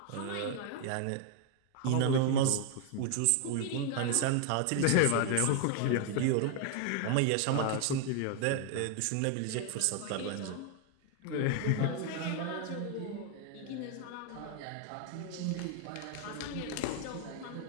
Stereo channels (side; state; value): both; different; correlation 0.00